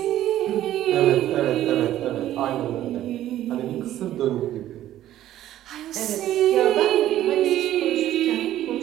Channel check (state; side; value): quieter; left; 13.0 dB